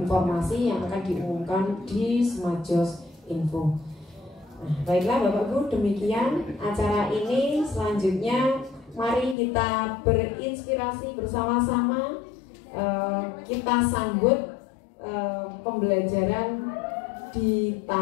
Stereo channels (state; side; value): drops out; right; at 9.3 s